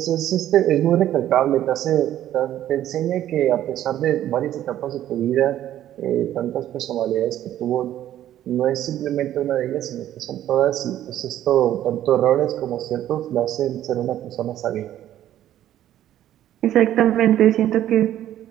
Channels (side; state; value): left; quieter; 12.2 dB